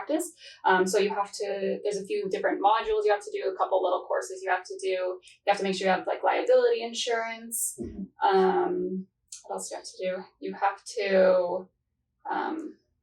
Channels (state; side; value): identical; both; correlation 1.00